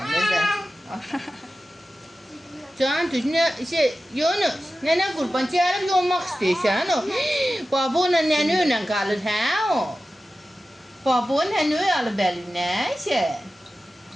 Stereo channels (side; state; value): both; normal; correlation 0.94